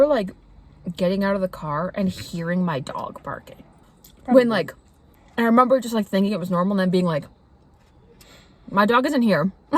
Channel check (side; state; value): both; identical; correlation 1.00